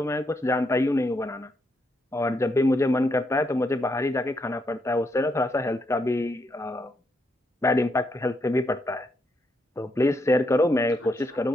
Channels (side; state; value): both; normal; correlation 0.78